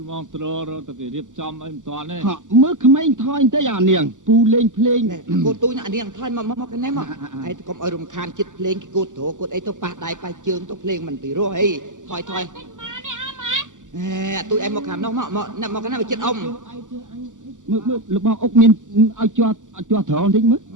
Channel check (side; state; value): left; late; 0.87 ms